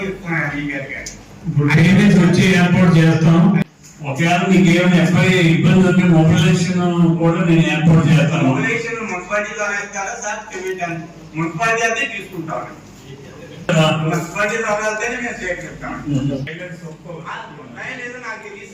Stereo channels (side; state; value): both; identical; correlation 1.00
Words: చెప్తున్నాను ఈ గారు. ఇప్పుడు పేమెంట్స్ వచ్చి ఏర్పాటు చేస్తాం. ఒకవేళ మీకు ఏమైనా ఎఫ్ఐ ఇబ్బంది ఉంటే మొబిలైజేషన్ కూడా నేను ఏర్పాటు చేస్తాను. మొబిలైజేషన్ మున్సిపాలిటీలో వేస్తారా సార్? పేమెంట్ మున్సిపాలిటీ అయితే తీసుకుంటాం. మున్సిపాలిటీలో వెళ్తేనే మేము సేకరిస్తాం. లేదు నాకు తెలియదు